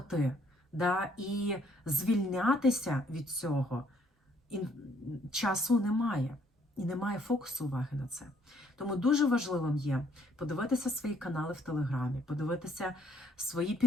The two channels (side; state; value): both; normal; correlation 0.66